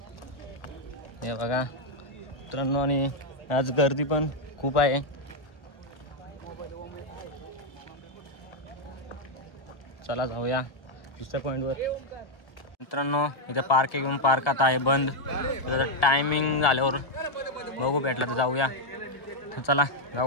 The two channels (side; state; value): right; late; 1.4 ms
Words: हे बघा मित्रांनो आणि आज गर्दी पण खूप आहे. चला जाऊया दुसऱ्या पॉईंटवर. मित्रांनो इथे पार्क घेऊन पार्क आता आहे बंद. त्याचा टायमिंग झाल्यावर बघू भेटला तर जाऊया. चला